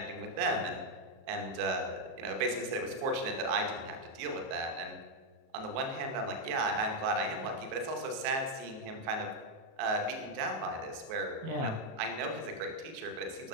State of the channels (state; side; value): late; left; 37 ms